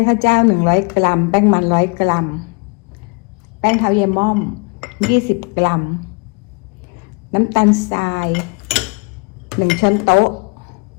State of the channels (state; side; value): quieter; right; 33.3 dB